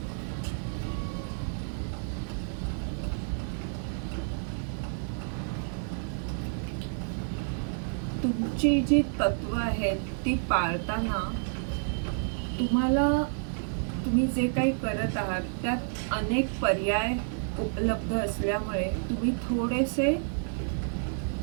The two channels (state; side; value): silent; left; digital silence